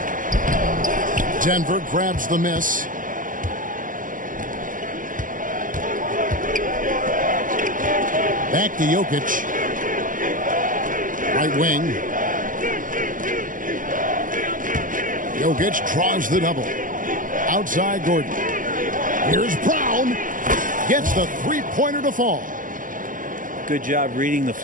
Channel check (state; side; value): late; left; 0.39 ms